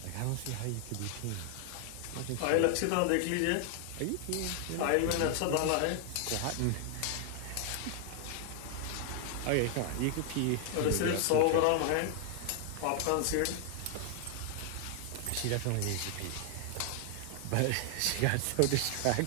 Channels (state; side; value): different; both; correlation 0.00